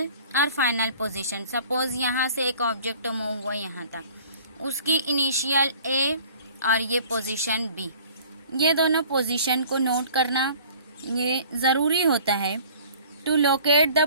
और फाइनल पोजीशन, सपोज यहाँ से एक ऑब्जेक्ट मूव हुआ यहाँ तक, उसकी इनिशियल ए और ये पोजीशन बी, ये दोनों पोजीशन को नोट करना ये ज़रूरी होता है टू लोकेट द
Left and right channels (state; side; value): inverted; both; correlation -0.50